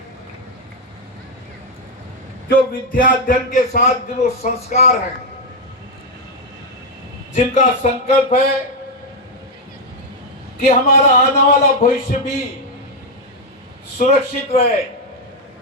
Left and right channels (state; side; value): normal; both; correlation 0.02